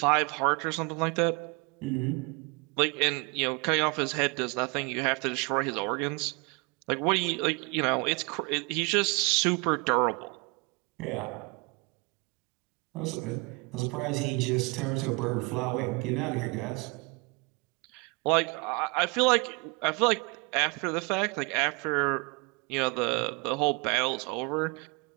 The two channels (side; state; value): left; quieter; 29.9 dB